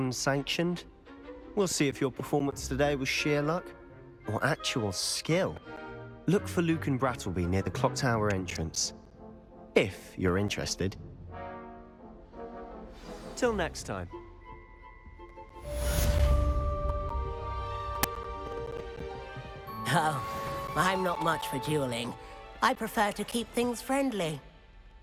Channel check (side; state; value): both; identical; correlation 1.00